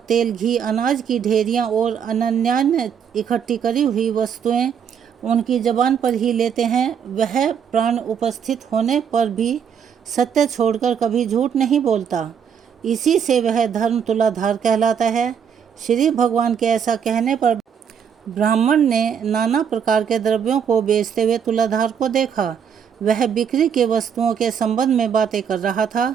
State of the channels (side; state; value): left; quieter; 7.6 dB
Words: तेल, घी, अनाज की ढेरियाँ और अन्यान्य इकट्ठी करी हुई वस्तुएं उनकी जबान पर ही लेते हैं, वह प्राण उपस्थित होने पर भी सत्य छोड़कर कभी झूठ नहीं बोलता। इसी से वह धर्म तुलाधार कहलाता है। श्री भगवान के ऐसा कहने पर ब्राह्मण ने नाना प्रकार के द्रव्यों को बेचते हुए तुलाधार को देखा। वह बिक्री के वस्तुओं के संबंध में बातें कर रहा था।